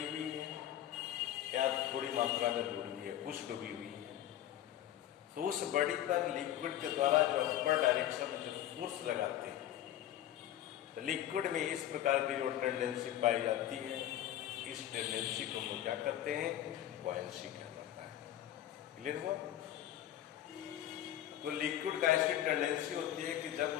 हुई है या थोड़ी मात्रा में डूबी है, कुछ डूबी हुई है, तो उस बॉडी पर लिक्विड के द्वारा जो अपर डायरेक्शन में जो फोर्स लगाते हैं, तो लिक्विड में इस प्रकार की जो टेंडेंसी पाई जाती है, इस टेंडेंसी को हम लोग क्या करते हैं? बॉयंसी कहलाता है। क्लियर हुआ? तो लिक्विड का ऐसी टेंडेंसी होती है कि जब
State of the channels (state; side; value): quieter; right; 12.2 dB